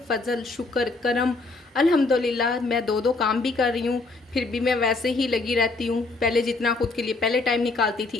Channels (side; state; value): right; quieter; 3.4 dB